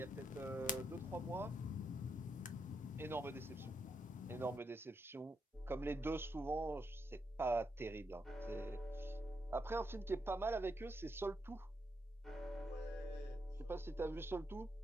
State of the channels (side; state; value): both; normal; correlation 0.81